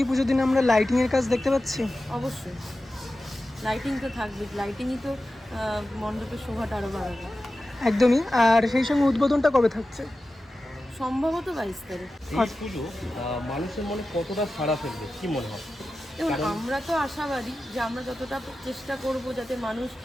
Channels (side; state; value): both; normal; correlation 0.94